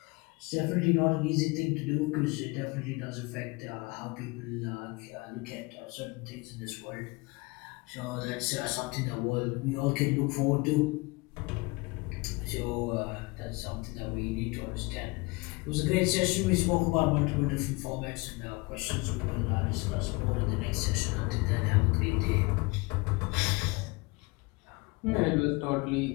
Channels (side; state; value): right; quieter; 25.5 dB